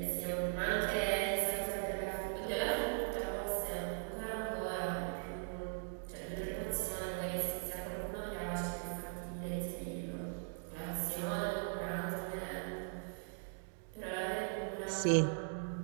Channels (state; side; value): silent; left; digital silence